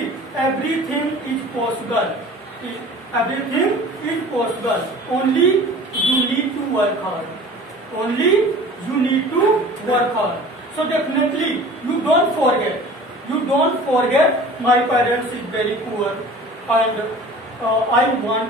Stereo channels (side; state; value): both; normal; correlation 0.43